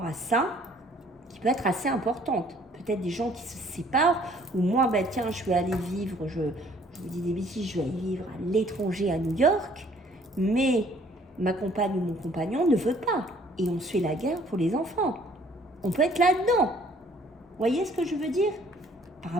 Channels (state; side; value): normal; both; correlation 0.59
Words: à ça qui peut être assez importante. Peut-être des gens qui se séparent, ou moi, ben, tiens, je vais aller vivre, je vous dis des bêtises, je vais aller vivre à l'étranger à New York, mais ma compagne ou mon compagnon ne veut pas. Et on se fait la guerre pour les enfants. On peut être là-dedans. Vous voyez ce que je veux dire? Par